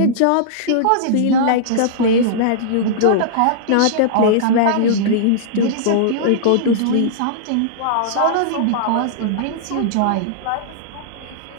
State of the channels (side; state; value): both; different; correlation -0.02